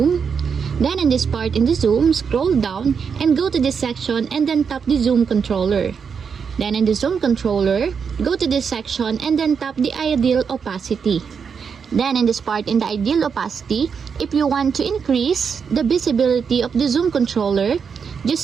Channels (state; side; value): quieter; left; 6.3 dB